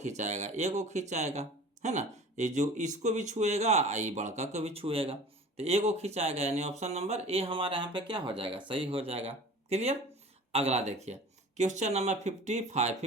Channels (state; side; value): normal; both; correlation 0.42